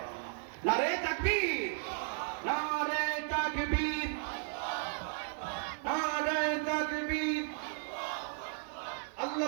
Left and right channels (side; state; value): left; silent; 54 dB below the other